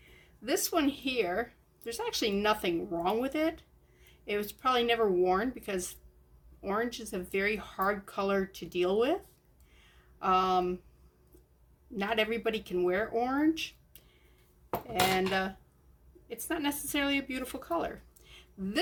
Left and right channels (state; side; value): identical; both; correlation 1.00